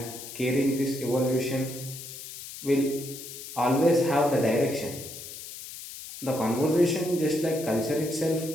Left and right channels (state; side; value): noise; left; hiss, 12 dB below the sound